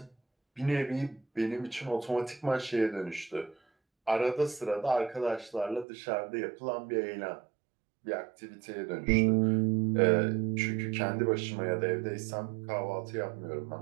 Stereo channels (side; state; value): left; drops out; at 5.9 s